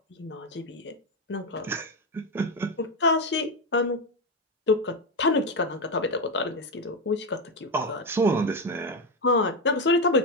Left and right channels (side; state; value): both; normal; correlation 0.11